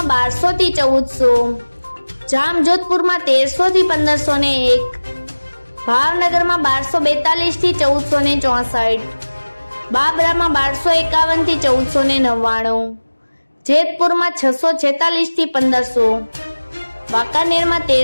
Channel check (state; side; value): inverted; both; correlation -1.00